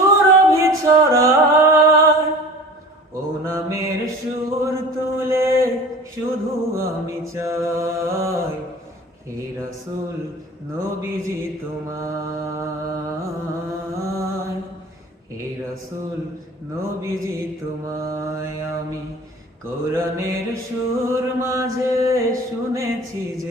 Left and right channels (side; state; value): both; normal; correlation 0.40